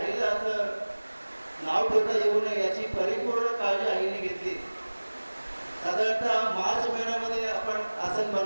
असं नाव ठेवता येऊ नये याची परिपूर्ण काळजी आईने घेतली. साधारणतः मार्च महिन्यामध्ये आपण आसन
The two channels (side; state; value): both; inverted; correlation -1.00